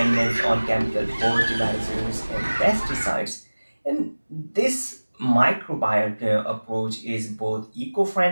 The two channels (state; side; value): inverted; both; correlation -1.00